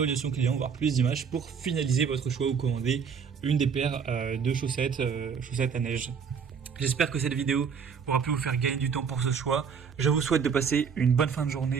clients, voir plus d'images pour finaliser votre choix ou commander une des paires de chaussettes à neige. J'espère que cette vidéo aura pu vous faire gagner du temps pour ce choix. Je vous souhaite de passer une bonne fin de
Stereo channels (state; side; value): quieter; left; 6.4 dB